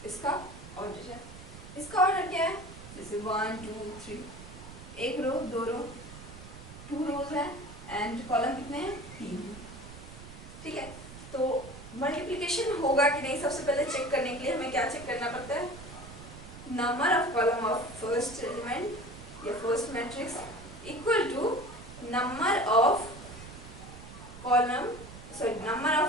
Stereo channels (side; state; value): right; noise; rumble, 15 dB below the sound